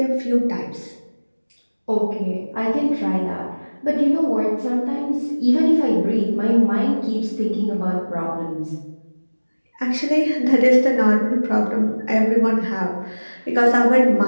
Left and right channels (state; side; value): inverted; both; correlation -1.00